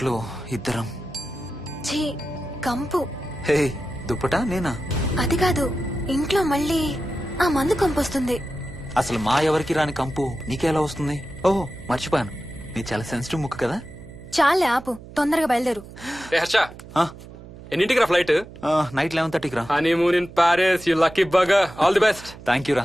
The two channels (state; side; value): noise; right; hum, 17 dB below the sound